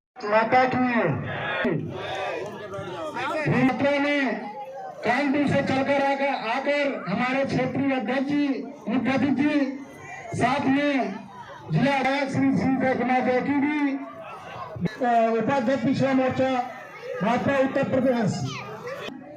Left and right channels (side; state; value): both; identical; correlation 1.00